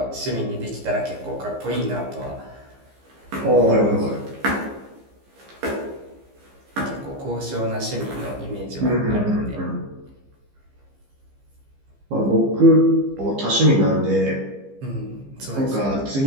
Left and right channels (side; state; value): left; late; 15 ms